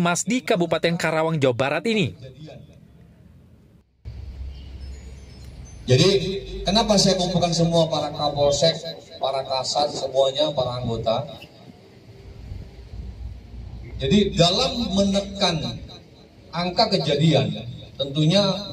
di Kabupaten Karawang, Jawa Barat ini. Jadi kenapa saya kumpulkan semua para Kapolsek, para Kasat, semuanya, para anggota? Jadi dalam menekan angka kejadian, tentunya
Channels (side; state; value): both; identical; correlation 1.00